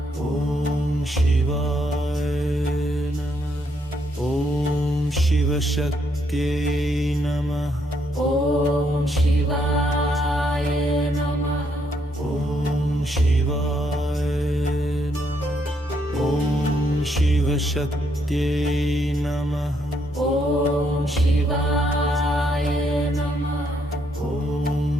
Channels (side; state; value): both; normal; correlation 0.74